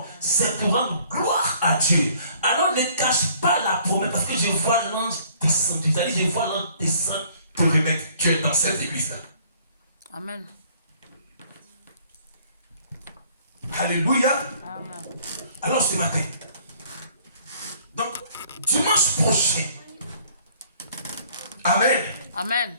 c'est pour rendre gloire à Dieu. Alors ne cache pas la promesse, parce que je vois l'ange descendre. C'est-à-dire, je vois l'ange descendre pour remettre Dieu dans cette église-là. Amen. Alléluia. Amen. Alors ce matin, donc dimanche prochain, amen. Amen.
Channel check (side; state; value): both; inverted; correlation -0.58